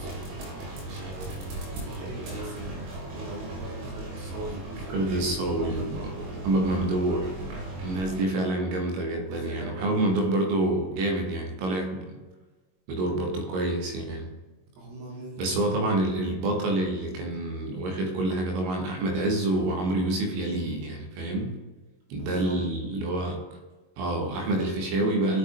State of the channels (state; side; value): late; left; 22 ms